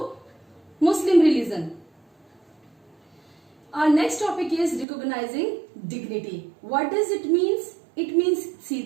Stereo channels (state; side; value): drops out; left; at 4.9 s